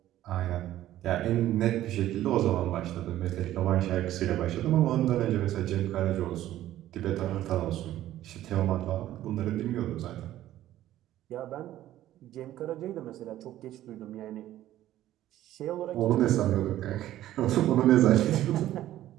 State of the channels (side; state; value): left; quieter; 13.5 dB